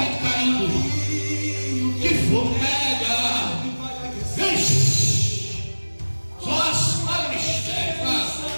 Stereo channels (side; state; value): both; inverted; correlation -1.00